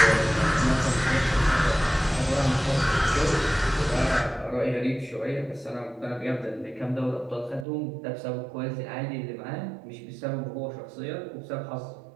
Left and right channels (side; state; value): left; drops out; at 7.7 s